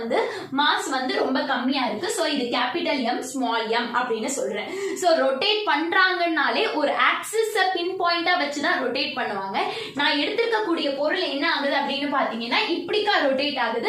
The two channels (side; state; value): both; identical; correlation 1.00